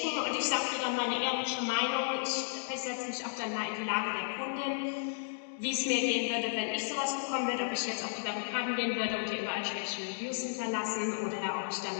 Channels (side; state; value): right; silent; digital silence